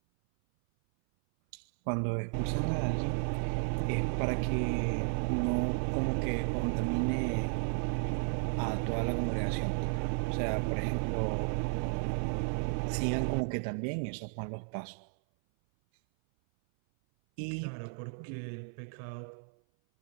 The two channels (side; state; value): left; silent; 56 dB below the other